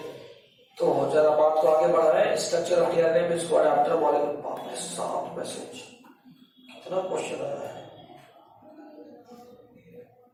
तो जरा बात को आगे बढ़ रहे हैं। स्ट्रक्चर ऑफ टीआरएनए में इसको अडाप्टर मॉलिक्यूल। बाप रे, 7 मैसेज, कितना क्वेश्चन आया है।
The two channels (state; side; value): identical; both; correlation 1.00